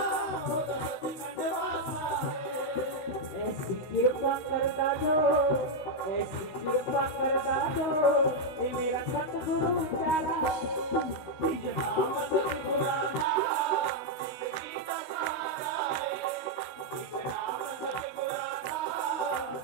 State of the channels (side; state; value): right; late; 16 ms